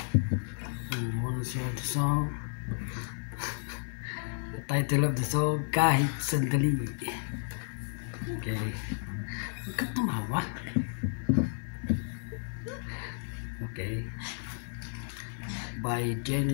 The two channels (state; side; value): silent; right; 56 dB below the other